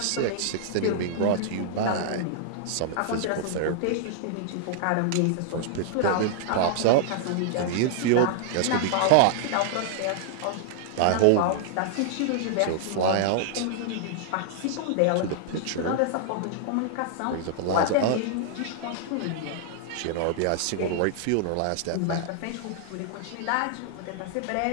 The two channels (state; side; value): different; both; correlation -0.01